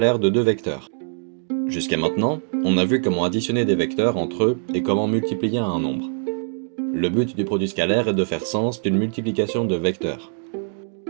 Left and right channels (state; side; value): silent; left; digital silence